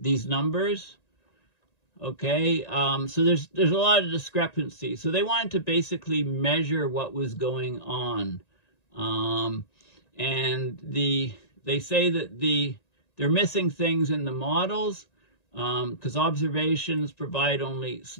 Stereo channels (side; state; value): right; late; 1.9 ms